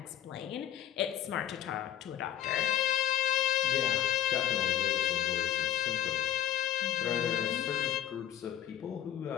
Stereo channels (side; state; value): right; quieter; 11.2 dB